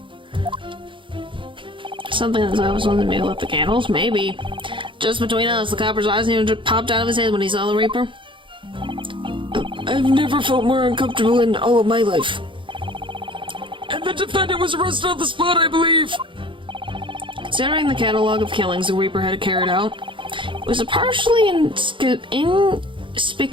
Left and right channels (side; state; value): left; late; 0.24 ms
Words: Something that I was on the middle of the candles? Maybe. Just between us, the copper's eyes nearly popped out of his head when he saw the Reaper. I've never felt more uncomfortable in all of my life. And the defendant was arrested on the spot, I believe. Considering the catalog of killings the Reaper had carried out, it was a partially